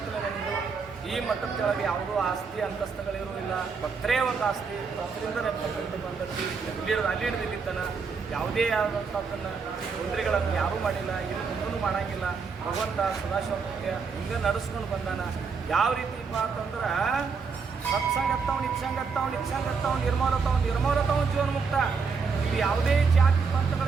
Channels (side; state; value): left; quieter; 5.3 dB